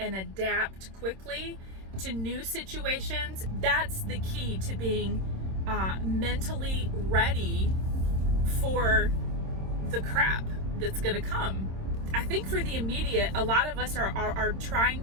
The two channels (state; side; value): late; left; 26 ms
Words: adapt quickly to new situations. That's the key to being mentally ready for the crap that's gonna come. I think for the immediate, a lot of us are trying